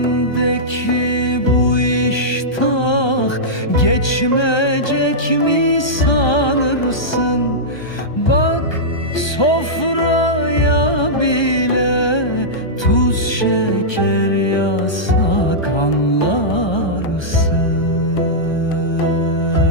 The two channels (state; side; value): late; right; 1.3 ms